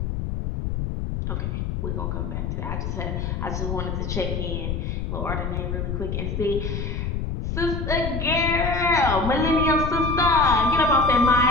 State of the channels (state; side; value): noise; left; rumble, 3 dB below the sound